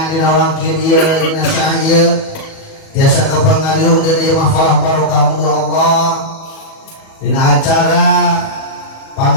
dina wangkid ieu dina saah ieu tiasa kapangariung dina ieu mahfalah barokah muga Allah dina acara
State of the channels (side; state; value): right; late; 37 ms